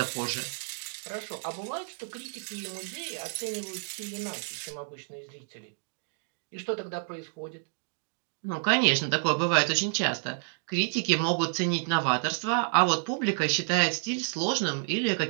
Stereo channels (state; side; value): silent; left; digital silence